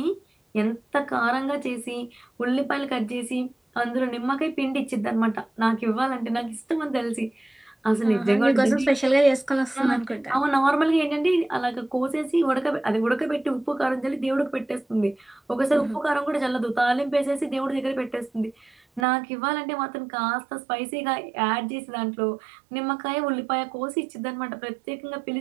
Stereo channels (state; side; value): drops out; left; at 19.1 s